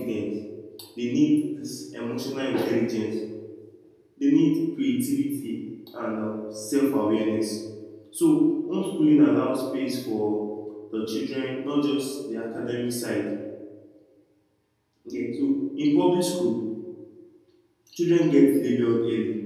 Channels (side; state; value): both; identical; correlation 1.00